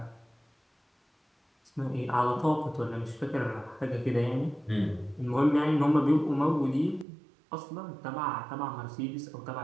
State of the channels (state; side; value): drops out; left; at 7.1 s